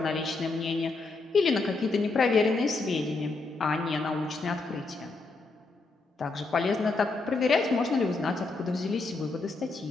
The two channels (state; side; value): quieter; right; 3.6 dB